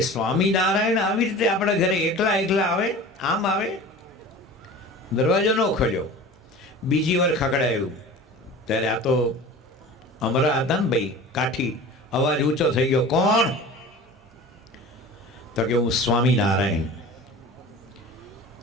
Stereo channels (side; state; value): both; normal; correlation 0.38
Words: સ્વામિનારાયણ આવી રીતે આપણા ઘરે એકલા આવે, આમ આવે? દરવાજો ન ખોલ્યો. બીજી વાર ખકડાયું ત્યારે આ તો અમરા હતા ને ભાઈ, કાઠી. અવાજ ઊંચો થઈ ગયો, કોણ? તો કે હું સ્વામિનારાયણ.